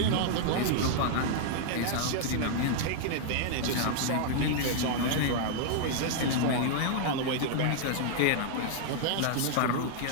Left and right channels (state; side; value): different; both; correlation -0.01